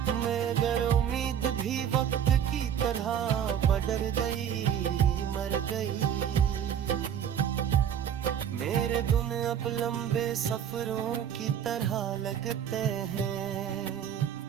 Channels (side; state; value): left; quieter; 8.9 dB